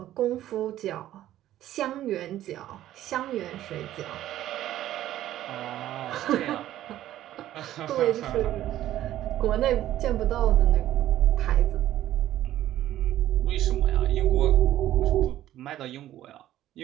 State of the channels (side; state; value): left; quieter; 13.2 dB